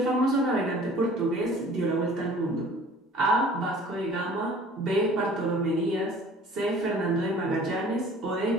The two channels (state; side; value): normal; both; correlation 0.49